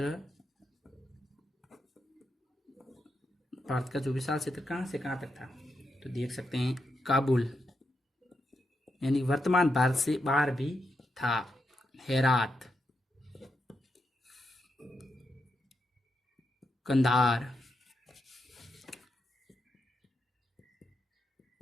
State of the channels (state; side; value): normal; both; correlation 0.84